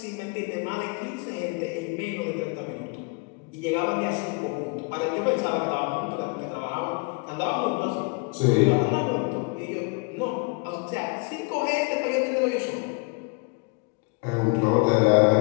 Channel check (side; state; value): right; quieter; 30.2 dB